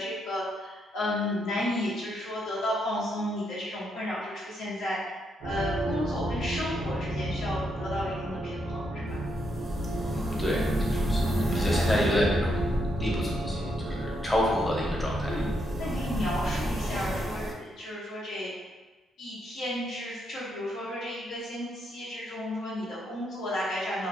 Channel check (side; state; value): both; normal; correlation 0.78